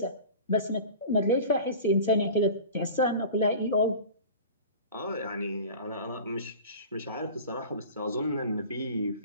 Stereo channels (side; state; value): both; inverted; correlation -0.37